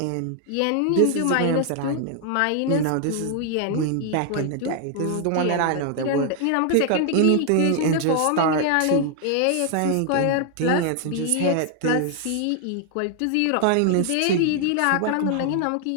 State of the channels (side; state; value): both; different; correlation 0.00